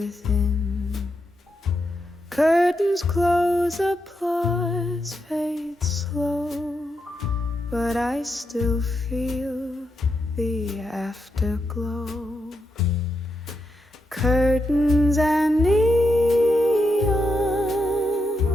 Curtains close, applause fades slow, but I still feel the afterglow. Curtains and neon,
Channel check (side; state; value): both; normal; correlation 0.83